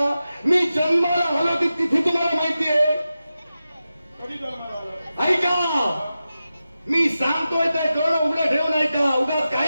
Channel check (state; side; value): inverted; both; correlation -0.93